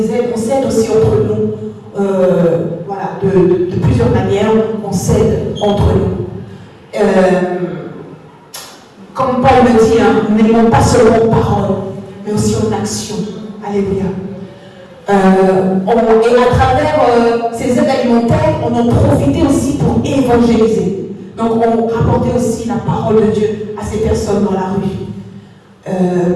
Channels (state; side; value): identical; both; correlation 1.00